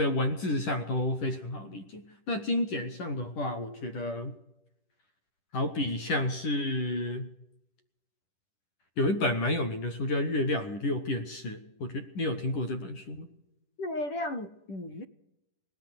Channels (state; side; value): late; right; 10 ms